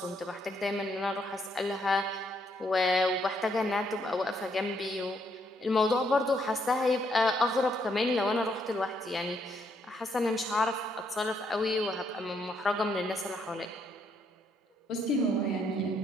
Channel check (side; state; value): both; normal; correlation 0.73